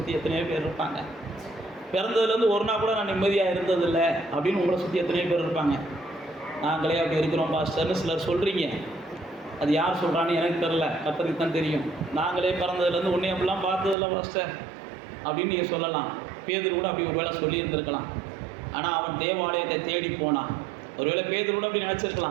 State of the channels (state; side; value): drops out; left; at 14.0 s